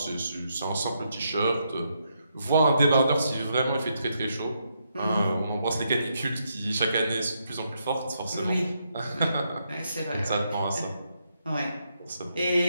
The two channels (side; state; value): both; inverted; correlation -0.79